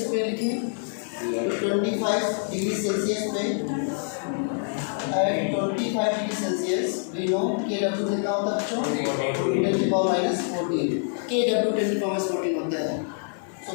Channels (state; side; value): silent; right; 61 dB below the other